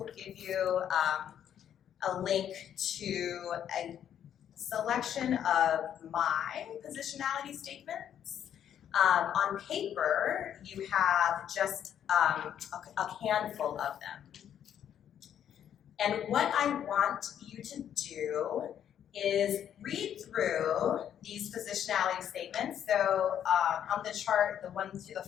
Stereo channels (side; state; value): right; quieter; 9.7 dB